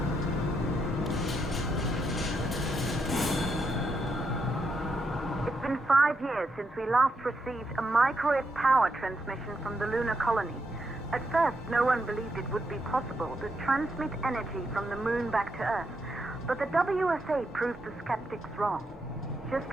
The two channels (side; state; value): both; normal; correlation 0.81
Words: It's been 5 years since we last received a microwave power transmission from the lunar colony. At first, no one believed it would be possible to transmit energy from the moon back to Earth. But the WSA proved the skeptics wrong. Just